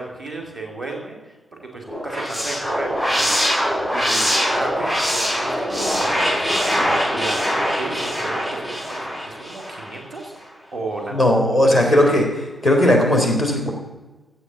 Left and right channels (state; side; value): normal; both; correlation 0.81